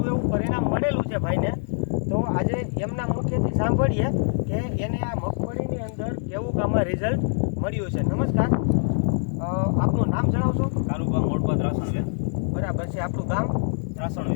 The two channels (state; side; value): silent; right; digital silence